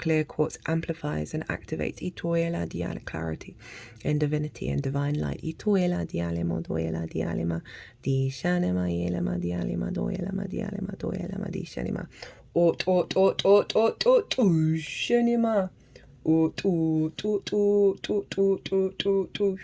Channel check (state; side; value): identical; both; correlation 1.00